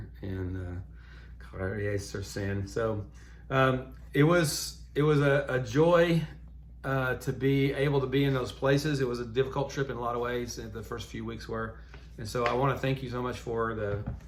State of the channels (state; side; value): identical; both; correlation 1.00